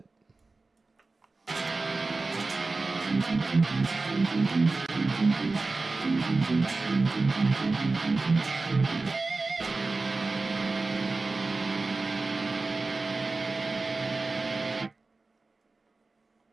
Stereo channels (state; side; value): quieter; left; 3.6 dB